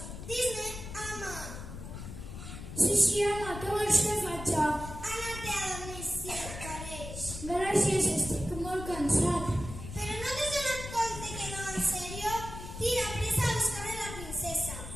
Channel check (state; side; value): noise; left; rumble, 10 dB below the sound